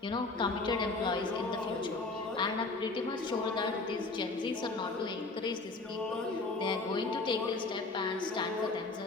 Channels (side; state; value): right; quieter; 3.5 dB